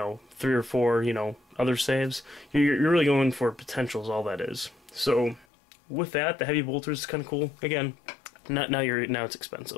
3 or 4, other saves. You're really going for potentials, all that is. So, with that, the heavy bolter is kind of cool. Again, now it's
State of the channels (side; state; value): right; drops out; at 5.5 s